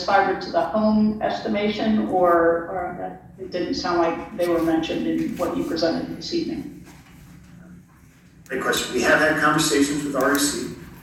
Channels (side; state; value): both; identical; correlation 1.00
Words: fiber to the home estimation, or it didn't sound like they were mentioned in what you presented this evening? Great question. We have had conversations with REC.